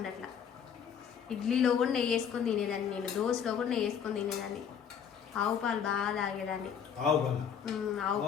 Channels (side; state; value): right; quieter; 7.8 dB